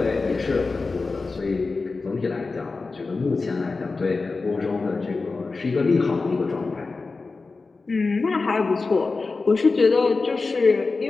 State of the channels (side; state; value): right; quieter; 4.0 dB